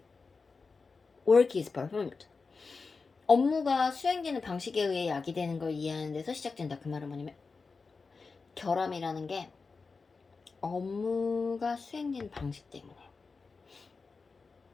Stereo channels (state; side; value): quieter; right; 4.5 dB